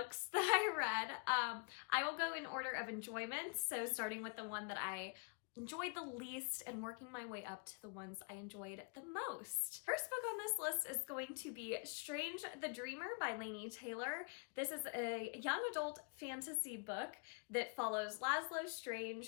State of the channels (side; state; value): right; quieter; 36.5 dB